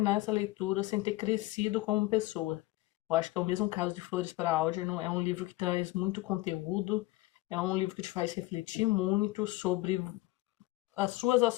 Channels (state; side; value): quieter; right; 18.9 dB